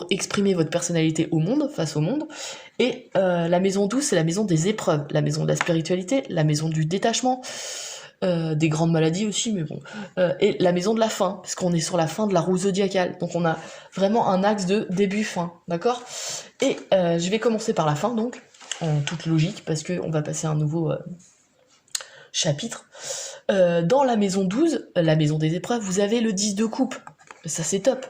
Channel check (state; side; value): identical; both; correlation 1.00